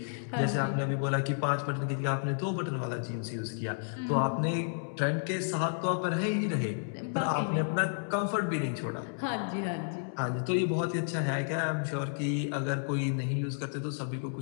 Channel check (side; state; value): right; silent; 57 dB below the other